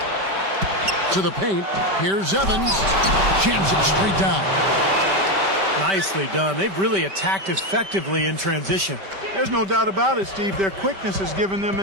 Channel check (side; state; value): left; late; 5.2 ms